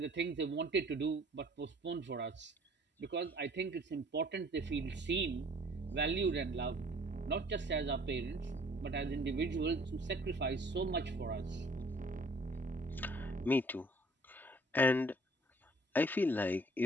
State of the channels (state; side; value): normal; both; correlation 0.56